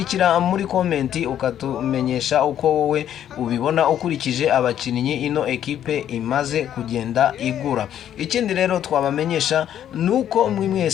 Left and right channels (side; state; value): right; quieter; 10.4 dB